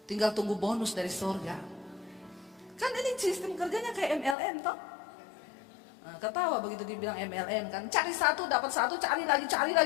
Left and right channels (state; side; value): drops out; right; at 4.4 s